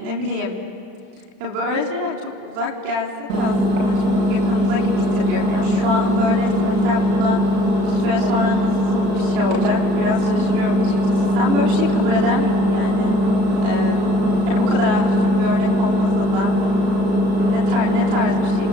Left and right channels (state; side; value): late; left; 36 ms